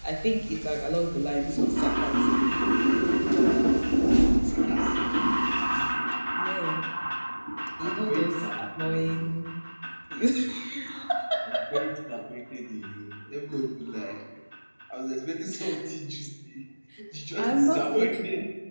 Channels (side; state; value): both; inverted; correlation -1.00